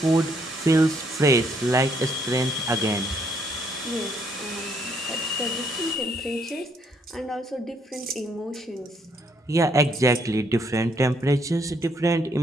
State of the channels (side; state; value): both; normal; correlation 0.70